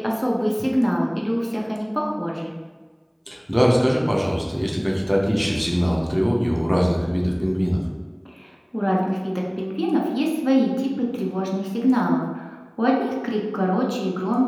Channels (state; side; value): identical; both; correlation 1.00